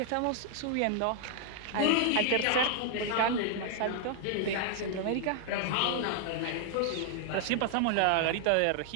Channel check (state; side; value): different; both; correlation 0.00